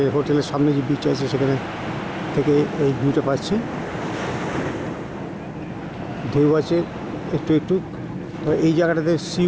হোটেলের সামনে যে বিচ আছে সেখানে থেকে এই ভিউটা পাচ্ছি। ঢেউ আছে একটু একটু। এই জায়গাটাতে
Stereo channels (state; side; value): identical; both; correlation 1.00